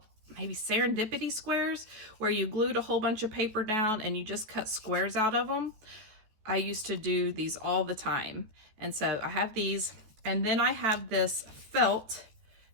maybe serendipity squares, where you glued a whole bunch of paper down and you just cut squares out of them. I used to do these all the time. And so I have these, and then I have these felt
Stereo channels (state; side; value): late; left; 14 ms